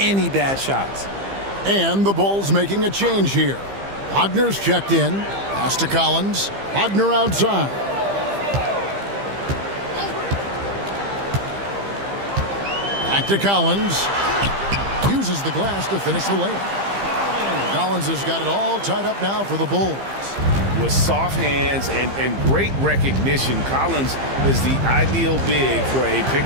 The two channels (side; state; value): left; late; 15 ms